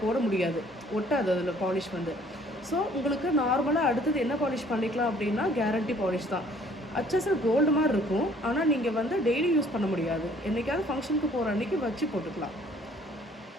போட முடியாது, ஒட்டாது அதில் பாலிஷ் வந்து. ஸோ உங்களுக்கு நார்மலாக அடுத்தது என்ன பாலிஷ் பண்ணிக்கலாம் அப்படின்னா கேரண்டி பாலிஷ் தான். அச்சசல் கோல்டு மாதிரி இருக்கும், ஆனால் நீங்கள் வந்து டெய்லி யூஸ் பண்ண முடியாது. என்றைக்காவது ஃபங்க்ஷனுக்கு போகிற அன்றைக்கி வச்சு போட்டுக்கலாம்.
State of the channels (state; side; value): normal; both; correlation 0.58